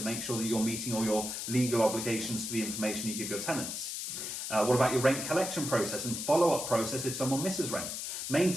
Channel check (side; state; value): left; noise; hiss, 5 dB below the sound